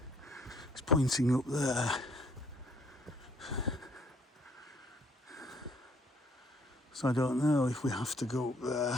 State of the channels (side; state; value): both; normal; correlation 0.63